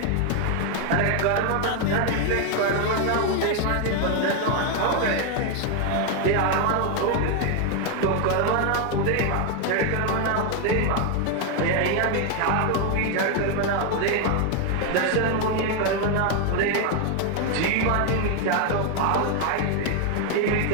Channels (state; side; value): different; both; correlation 0.01